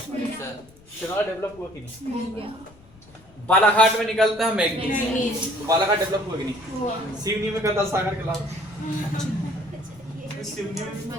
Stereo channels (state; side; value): noise; left; rumble, 26 dB below the sound